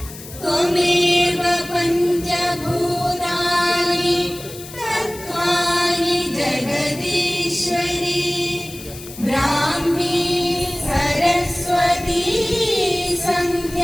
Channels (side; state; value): left; noise; hiss, 15 dB below the sound